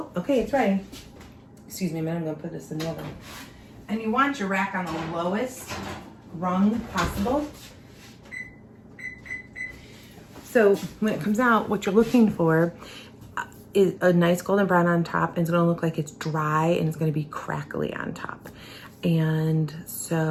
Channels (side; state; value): both; identical; correlation 1.00